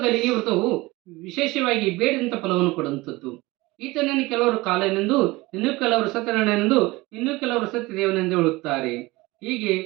ಈ ವ್ರತವು ವಿಶೇಷವಾಗಿ ಬೇಡದಂತ ಫಲವನ್ನು ಕೊಡುವಂಥದ್ದು. ಈತನನ್ನು ಕೆಲವರು ಕಾಲನೆಂದು, ಇನ್ನೂ ಕೆಲವರು ಸತ್ಯನಾರಾಯಣನೆಂದು, ಇನ್ನೂ ಕೆಲವರು ಸತ್ಯದೇವನೆಂದು ಹೇಳುತ್ತಾರೆ. ಹೀಗೆ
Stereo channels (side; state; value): left; quieter; 21.3 dB